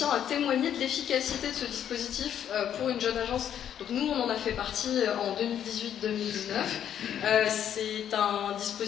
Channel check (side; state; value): right; quieter; 9.7 dB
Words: à témoigner de l'efficacité de ce dispositif pour une jeune agence. Donc nous, on en a fait partie en 2018-2019. C'est un